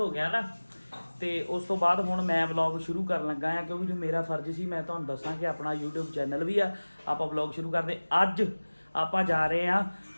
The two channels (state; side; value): inverted; both; correlation -1.00